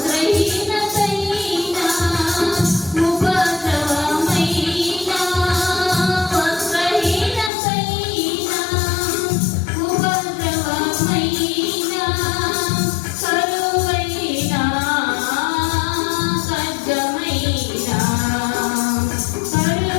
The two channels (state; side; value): drops out; right; at 7.5 s